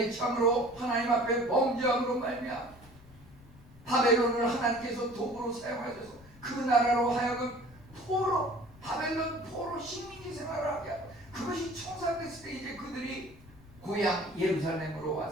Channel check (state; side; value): noise; left; rumble, 22 dB below the sound